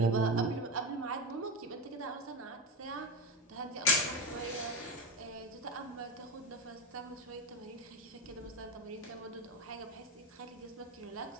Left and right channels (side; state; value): both; normal; correlation 0.17